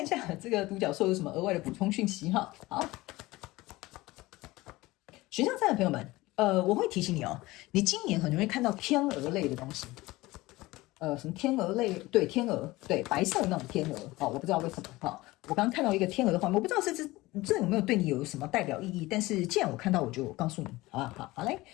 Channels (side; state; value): right; quieter; 19.7 dB